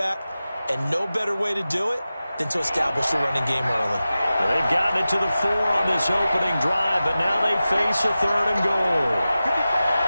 and no better way to do it than to establish the running game early. Well, they've gotten it to the 4 on this opening drive, but now they face a third and goal.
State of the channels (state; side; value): inverted; both; correlation -0.95